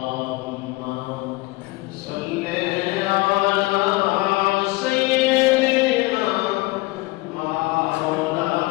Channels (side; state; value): right; quieter; 22.0 dB